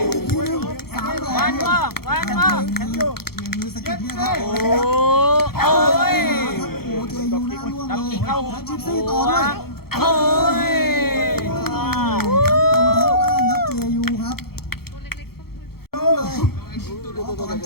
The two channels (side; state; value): right; late; 0.95 ms